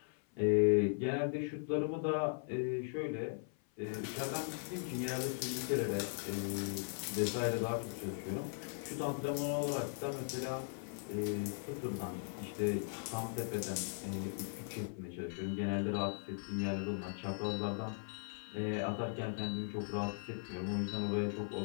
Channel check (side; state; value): right; silent; 52 dB below the other